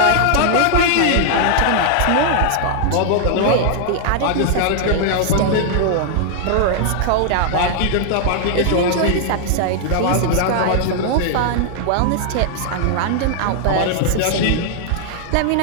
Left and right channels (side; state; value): both; different; correlation 0.00